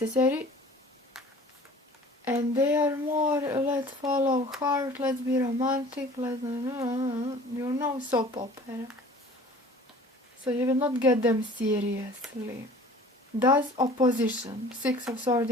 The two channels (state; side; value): normal; both; correlation 0.47